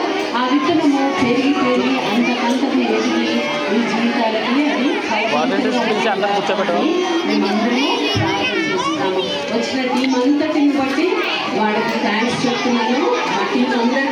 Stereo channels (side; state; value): both; identical; correlation 1.00